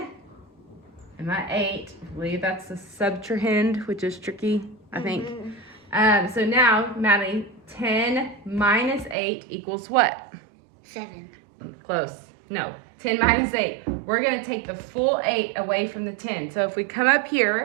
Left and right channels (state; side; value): drops out; left; at 9.2 s